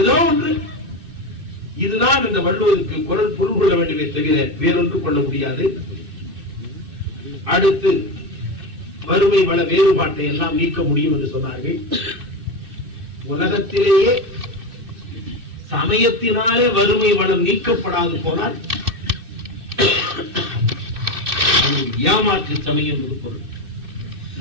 ஒன்று. இதுதான் இந்த வள்ளுவருக்கு குரல் பொருள் கொள்ள வேண்டுமே தவிர வேறொன்று கொள்ள முடியாது. அடுத்து வறுமை வள வேறுபாட்டை எல்லாம் நீக்க முடியும் என்று சொன்னார்கள். உலகத்திலேயே சமயத்தினாலே வறுமை வளம் நீக்கப்படாது போனால் ஏமாற்று சமயம் என்று பொருள்.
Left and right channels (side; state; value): left; late; 2.6 ms